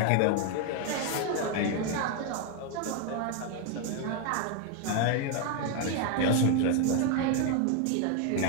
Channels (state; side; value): different; both; correlation 0.01